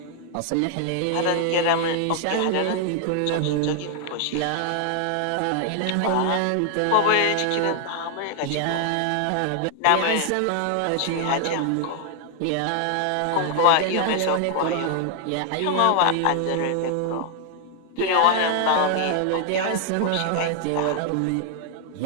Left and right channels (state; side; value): different; both; correlation 0.00